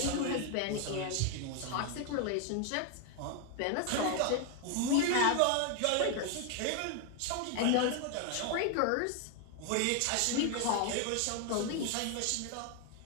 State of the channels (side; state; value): both; different; correlation 0.01